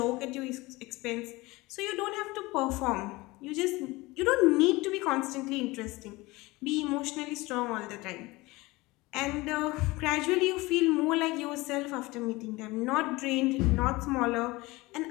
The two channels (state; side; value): quieter; right; 21.7 dB